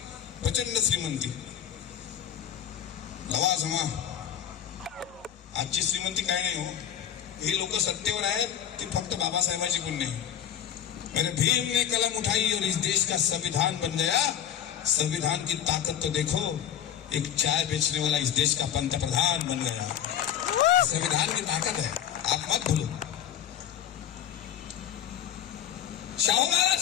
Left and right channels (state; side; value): quieter; right; 9.9 dB